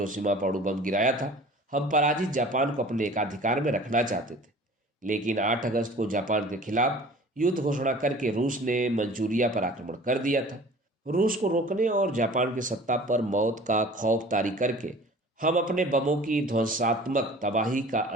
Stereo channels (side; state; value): both; normal; correlation 0.45